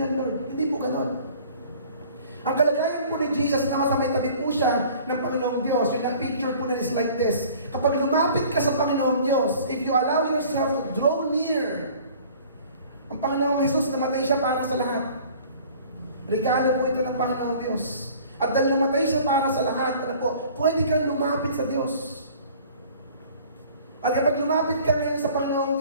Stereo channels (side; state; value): both; inverted; correlation -0.50